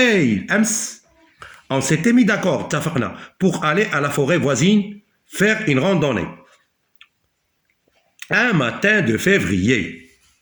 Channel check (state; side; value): identical; both; correlation 1.00